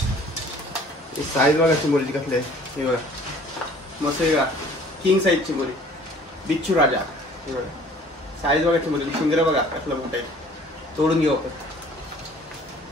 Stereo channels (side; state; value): both; normal; correlation 0.52